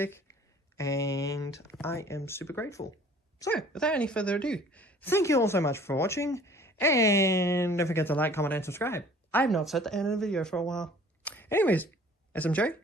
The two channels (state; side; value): normal; both; correlation 0.51